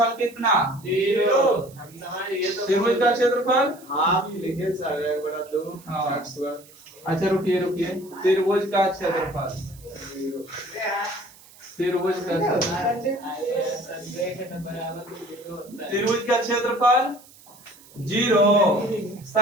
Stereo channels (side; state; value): right; noise; hiss, 24 dB below the sound